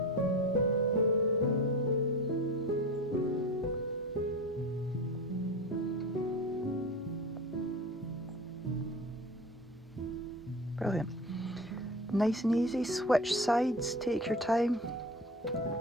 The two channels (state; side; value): normal; both; correlation 0.31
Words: Brilliant. Nice and easy, switch sides, take your time.